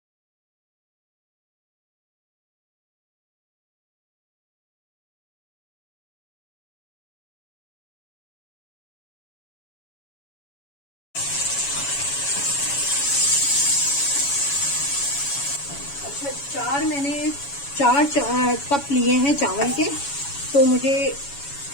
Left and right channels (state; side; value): late; right; 7.1 ms